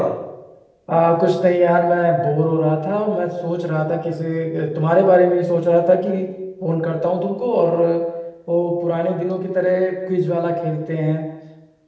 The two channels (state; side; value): identical; both; correlation 1.00